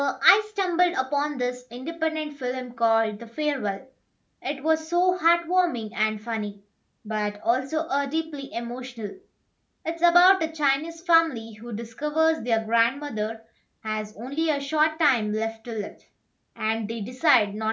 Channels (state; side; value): identical; both; correlation 1.00